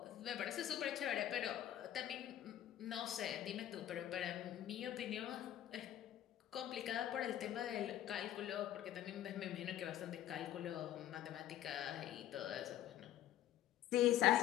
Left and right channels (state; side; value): quieter; right; 12.1 dB